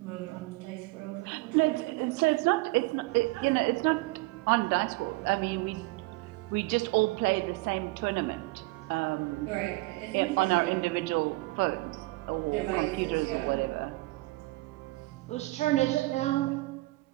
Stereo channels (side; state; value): left; quieter; 22.3 dB